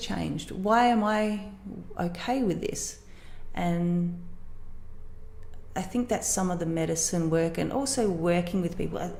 Why am I okay with this? And I think that's some of the medicine work, and also working with people,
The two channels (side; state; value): both; identical; correlation 1.00